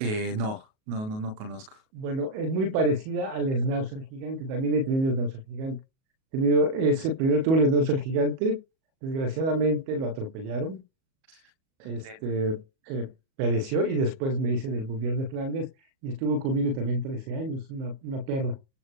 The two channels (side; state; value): left; late; 37 ms